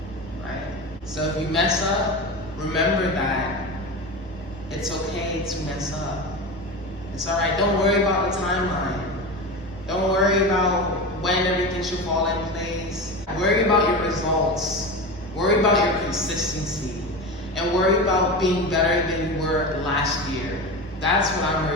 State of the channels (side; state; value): both; normal; correlation 0.25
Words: right? So if you mess up, remember that it's okay to mess up. It's all right. Don't worry about the timeline. Don't worry about when everything should fall in place. Worry about your results. Worry about your consistency. And worry about being better than you were last year. That's what I'm